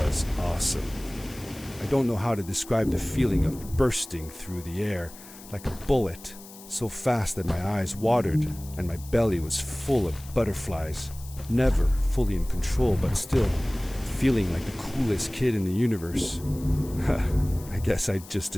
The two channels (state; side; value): noise; left; hiss, 18 dB below the sound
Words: awesome. I don't know how to describe the feeling of bursting through the air like a bullet, so fast that my eyes watered and my belly was full of butterflies. Never fully in control, but still feeling like the coolest kid in the universe. I guess I just